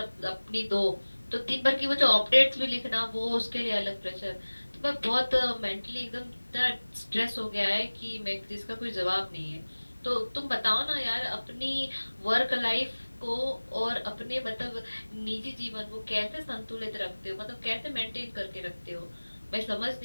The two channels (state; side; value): inverted; both; correlation -1.00